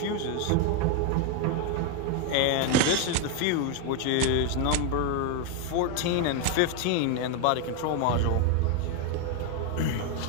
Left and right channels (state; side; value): different; both; correlation 0.01